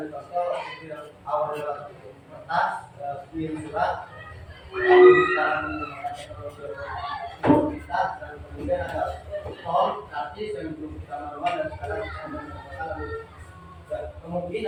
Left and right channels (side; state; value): both; identical; correlation 1.00